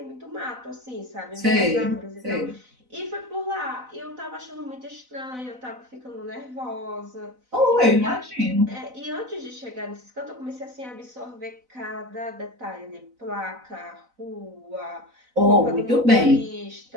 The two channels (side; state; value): left; late; 4.0 ms